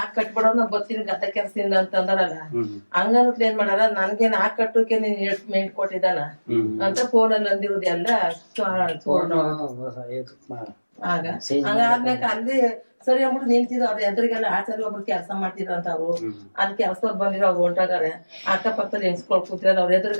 ಕಟ್ಬಿಡೋ ನಾ ಬರ್ತೀನಿ ಗದ್ದೆ ಕೆಲ್ಸದಿಂದ ಅಂತ ಅಂದಾರಲ್ಲ. ಹಂಗಂತ ಏನ್ ಮಾಡಾರ, ನನ್ಗೇನ್ ಕಟ್ಟೋಕೆ ನೀನ್ ಎಷ್ಟು ಮೇಂಟ್ ಕೊಟ್ಟಿದ್ದಾನ ಅಂತ ಫೋನಲ್ಲಿ ಅಂದಿರೋದು ಎಲ್ಲ ಆಗ ಹಂಗಾದ್ಮೇಲೆ ಅಲ್ಲಿ ಸರಿ ಅಂದ್ಬಿಟ್ಟು ನಿಂತಿದ್ರು. ಅವ್ರ ಎದುರಿಗೆಲ್ಲ ಆಚಾರ್ಯ ಒಬ್ರು ಕೆಲಸ ಮಾಡ್ತಿದ್ರ ಅಂತ ಅವ್ರು. ಅಲ್ಲಿ ಕೆಲ್ಸದವ್ರು ಬಂದಿರೋ ಅವ್ರು ಹೊಂಟಾಗಾರೆ, ಅಕ್ಕಪಕ್ಕದಲ್ಲಿ ಹೆಂಗ್ಸ್ಕೊಳ್ ಕೂತಿರೋದು ಅವ್ರ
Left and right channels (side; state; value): both; inverted; correlation -1.00